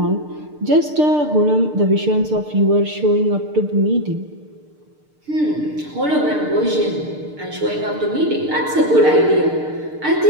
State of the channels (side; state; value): left; late; 6.7 ms